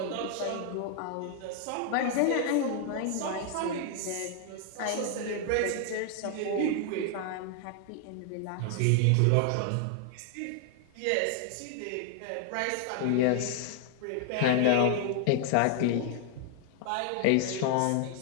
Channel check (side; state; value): both; different; correlation 0.00